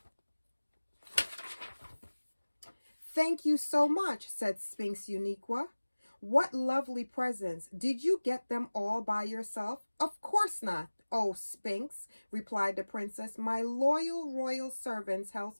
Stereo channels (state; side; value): inverted; both; correlation -1.00